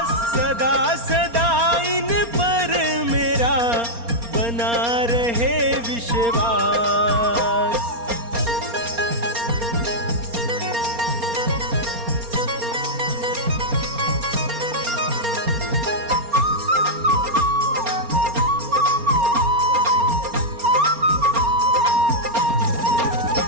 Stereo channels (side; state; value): left; late; 4.3 ms